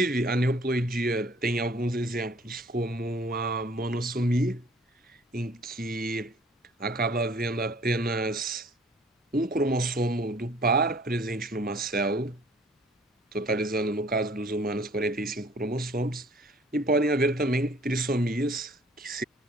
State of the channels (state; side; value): normal; both; correlation 0.55